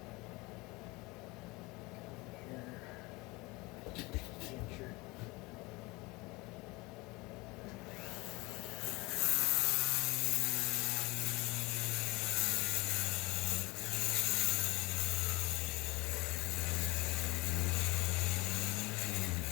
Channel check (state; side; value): quieter; right; 23.7 dB